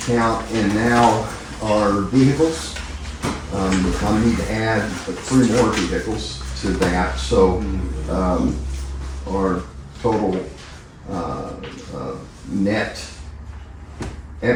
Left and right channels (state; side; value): identical; both; correlation 1.00